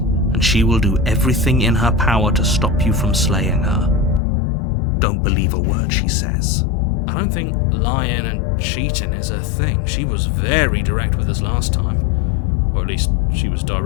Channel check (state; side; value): drops out; right; at 4.2 s